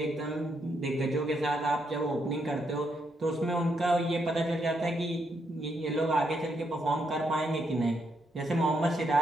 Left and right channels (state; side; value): normal; both; correlation 0.78